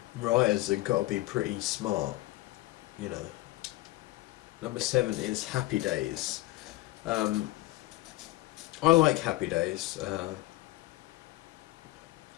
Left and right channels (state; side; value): quieter; right; 18.2 dB